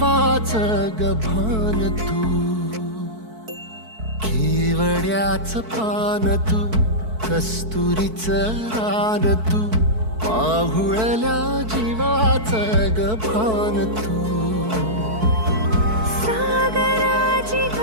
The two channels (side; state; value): left; late; 4.6 ms